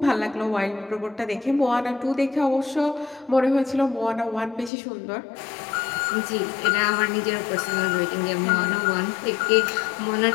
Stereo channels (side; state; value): right; drops out; at 4.7 s